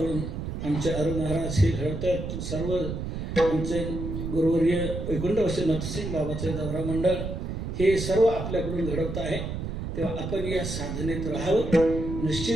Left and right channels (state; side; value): noise; right; rumble, 5 dB below the sound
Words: आमचे अरुण महाराज हे घडवतात, सर्व आमचे गुरुवर्य वैकुंठवासी नथसिंग बाबाचे दौरा मंडळ हे सर्व आपल्याकडून घडवत आहे. तेव्हा आपण या साधनेत राहावं.